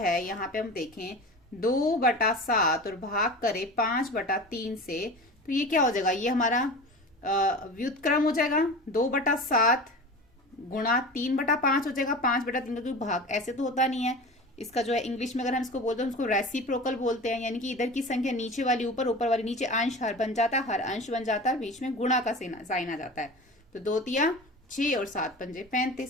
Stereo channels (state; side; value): normal; both; correlation 0.33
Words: यहाँ पे हम देखें 2/7 और भाग करें 5/3 से, तो ये क्या हो जाएगा, ये हमारा व्युत्क्रम हो जाएगा। 2/7 गुणा 3/5 हो जाएगा, 5/3 का कोई भाग ऐसे तो होता नहीं है। इसका जो है इंग्लिश में अगर हम इसको बोलते हैं उसको रेसिप्रोकल बोलते हैं, यानी कि इधर की संख्या नीचे वाली ऊपर, ऊपर वाली नीचे, अंश हर बन जाता है, हर अंश बन जाता है, बीच में गुणा का साइन आ जाता है। तो 2 तिया 6 और 7 पंजे